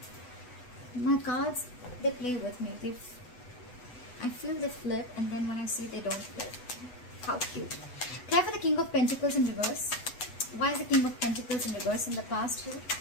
My cards, they play with me. I feel they flip, and then when I see they don't flip. How cute. Apply for the King of Pentacles in reverse. Why is the King of Pentacles in reverse in the past here?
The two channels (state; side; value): late; right; 8.1 ms